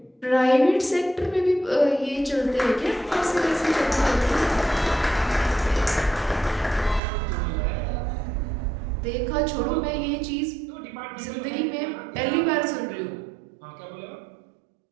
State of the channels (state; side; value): drops out; left; at 7.0 s